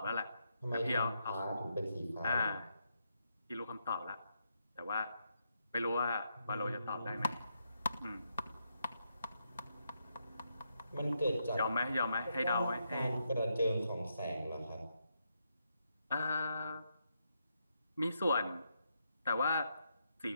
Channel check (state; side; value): inverted; both; correlation -0.80